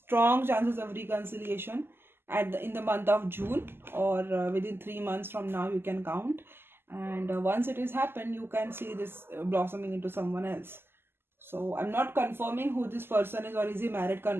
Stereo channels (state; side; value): late; left; 0.11 ms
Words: chances of reconciliation in the month of June, or within 3 months from now, you can count. And once it has happened, you can see this blossoming into someone else. So I'm not confirming who this person is, or is he married,